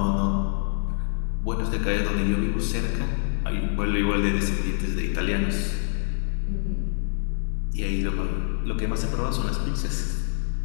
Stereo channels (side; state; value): right; silent; 61 dB below the other